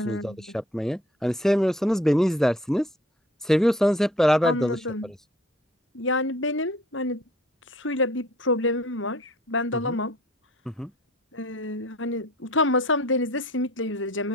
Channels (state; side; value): normal; both; correlation 0.52